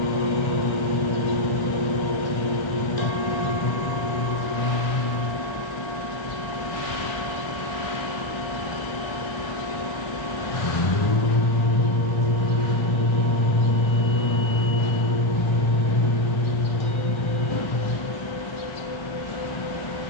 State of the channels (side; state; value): right; late; 1.3 ms